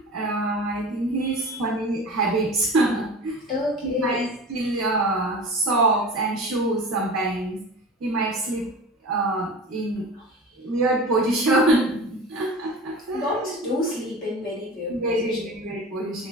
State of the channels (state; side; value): normal; both; correlation 0.34